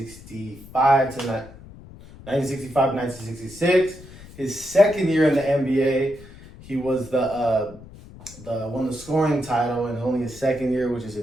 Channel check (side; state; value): left; noise; rumble, 18 dB below the sound